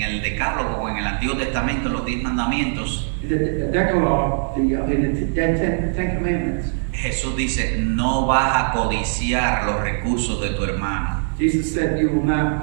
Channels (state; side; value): silent; left; digital silence